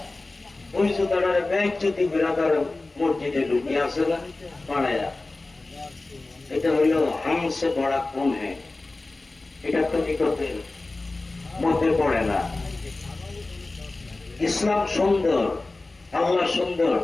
ওই জুতাটার ব্যাগ যদি বিরাদার মসজিদে ঢুকিয়ে আসে না পাড়ায়া, এটা হইল হামসে বড়া কম হ্যাঁ, এটা তো নিকটের মধ্যে পড়ে না। ইসলাম সুন্দর, আল্লাহ সুন্দর,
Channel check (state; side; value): quieter; right; 3.2 dB